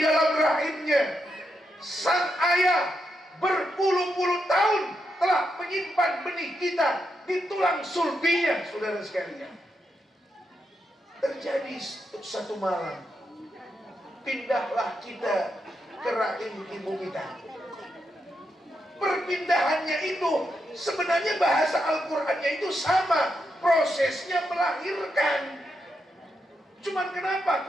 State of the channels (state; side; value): normal; both; correlation 0.83